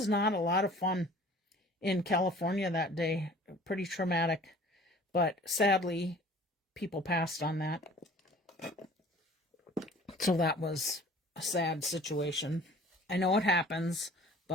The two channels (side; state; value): both; normal; correlation 0.49